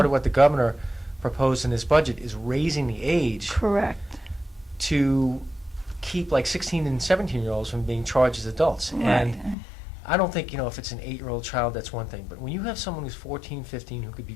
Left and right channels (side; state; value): right; drops out; at 9.6 s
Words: of what the governor proposed in his budget is raising the age Correct. to keep like 16 and 17-year-olds from being charged as adults. And Right. I don't think, if it's an 8-year-old child, that's one thing. But when you have someone who's 14, 15, who could be